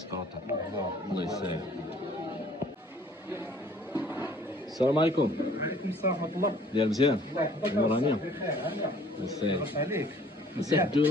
كروطه الله يسهل. السلام عليكم. وعليكم السلام ورحمة الله. ديال مزيان الله يحفظك. نورانية. بخير هلا. مساك عليك. مساك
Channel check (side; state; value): both; normal; correlation 0.55